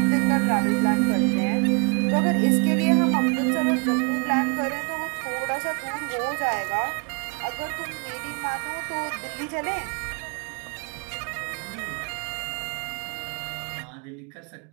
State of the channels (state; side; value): quieter; left; 34.5 dB